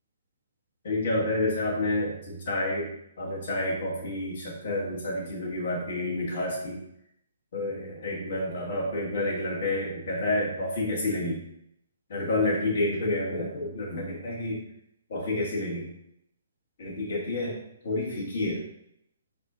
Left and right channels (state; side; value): inverted; both; correlation -0.55